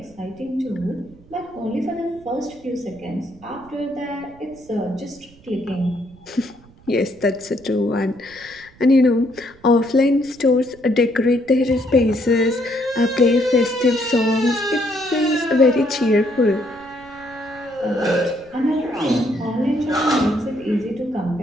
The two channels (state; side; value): noise; right; rumble, 25 dB below the sound